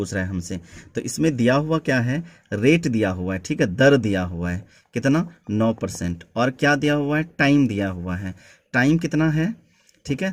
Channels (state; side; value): identical; both; correlation 1.00